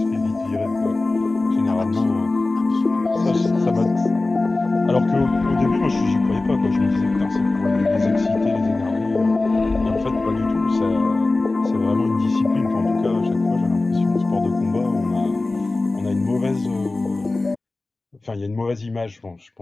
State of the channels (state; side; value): quieter; right; 3.2 dB